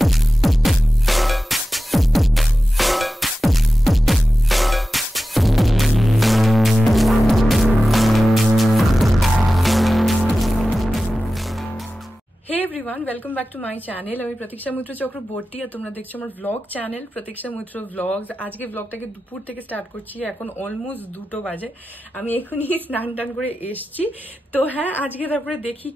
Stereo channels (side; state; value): both; normal; correlation 0.94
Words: Welcome back to my channel. আমি প্রতীক্ষা মৈত্র চক্রবর্তী আর তোমরা দেখছো আমার ব্লগ চ্যানেল প্রতীক্ষা মৈত্র ব্লগস। আজকে ব্লগটাকে দুপুর থেকে স্টার্ট করছি, এখন অলমোস্ট 2টো বাজে। আমি এখনই স্নান টান করে এসছি। তো হ্যাঁ, আজকে তারপরে দেখি